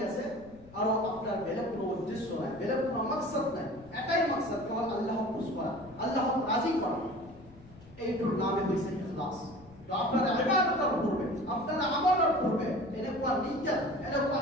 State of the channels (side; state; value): left; noise; rumble, 23 dB below the sound